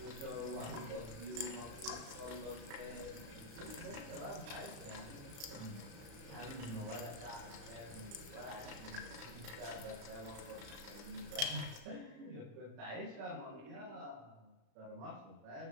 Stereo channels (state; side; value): late; left; 35 ms